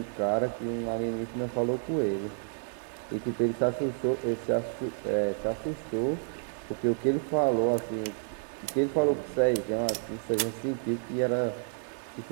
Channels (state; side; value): silent; left; digital silence